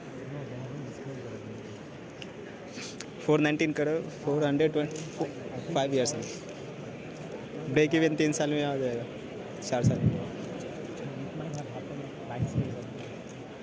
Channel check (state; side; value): identical; both; correlation 1.00